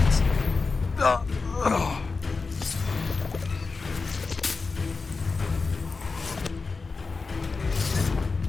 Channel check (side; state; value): right; quieter; 4.2 dB